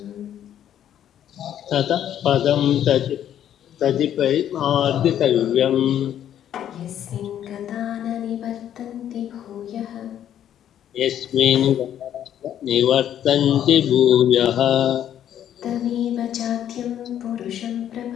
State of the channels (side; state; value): right; quieter; 10.5 dB